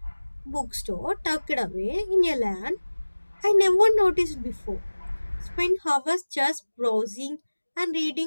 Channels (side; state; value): both; inverted; correlation -1.00